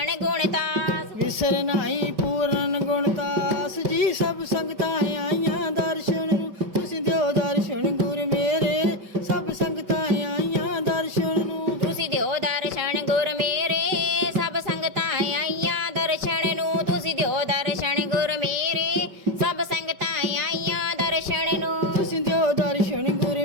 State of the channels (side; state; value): left; late; 5.3 ms